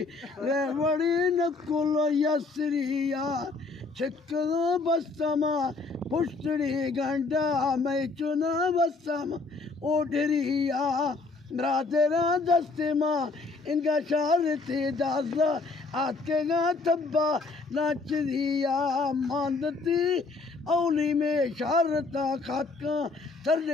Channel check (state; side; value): quieter; right; 3.8 dB